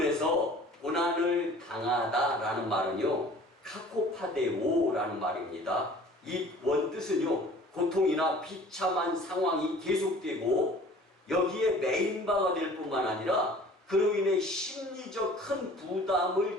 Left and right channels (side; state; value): both; normal; correlation 0.48